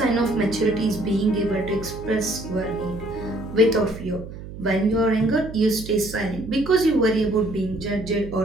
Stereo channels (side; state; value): right; noise; hum, 12 dB below the sound